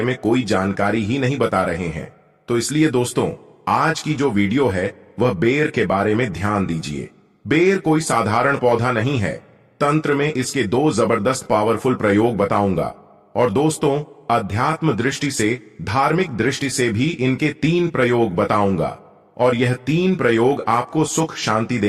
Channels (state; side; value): identical; both; correlation 1.00